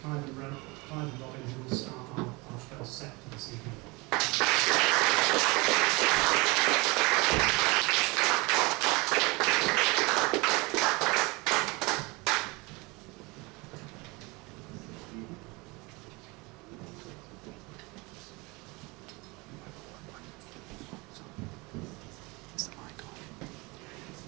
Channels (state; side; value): quieter; left; 25.5 dB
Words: Clive and Robin, who will start our first set for this evening.